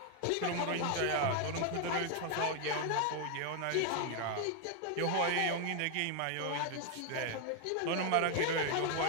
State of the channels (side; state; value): both; different; correlation 0.00